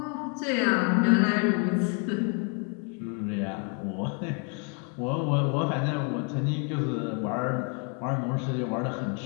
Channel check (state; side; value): quieter; right; 38.6 dB